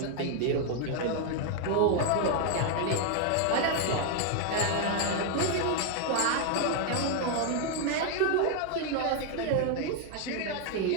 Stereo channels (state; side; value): different; both; correlation 0.00